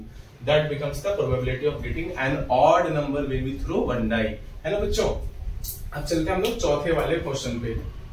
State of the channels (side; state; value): both; identical; correlation 1.00